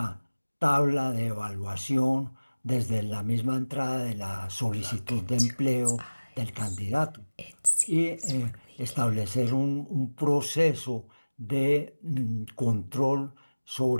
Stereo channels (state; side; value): inverted; both; correlation -1.00